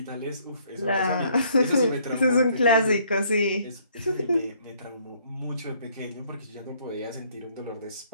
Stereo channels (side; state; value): both; inverted; correlation -0.64